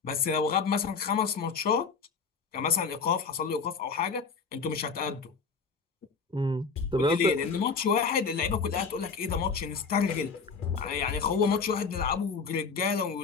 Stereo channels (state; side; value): quieter; right; 5.2 dB